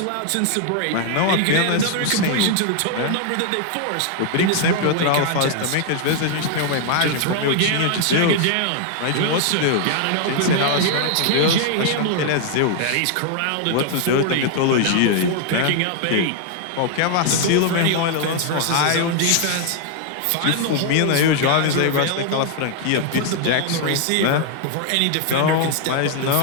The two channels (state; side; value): different; both; correlation 0.00